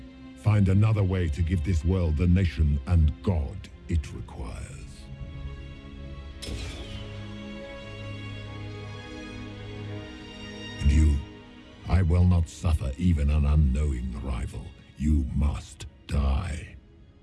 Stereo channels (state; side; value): identical; both; correlation 1.00